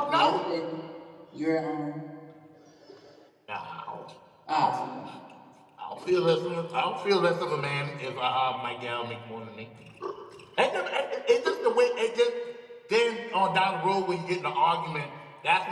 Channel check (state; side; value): identical; both; correlation 1.00